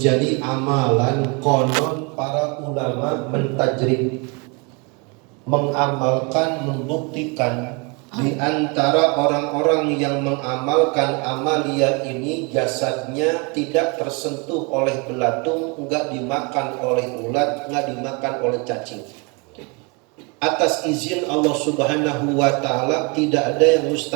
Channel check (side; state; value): left; quieter; 30.6 dB